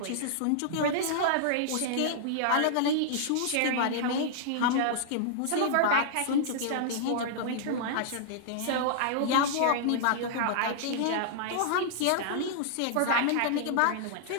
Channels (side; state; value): both; different; correlation -0.01